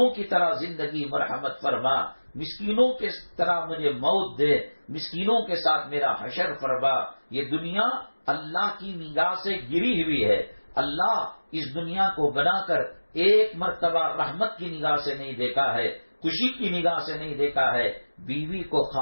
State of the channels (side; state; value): both; inverted; correlation -1.00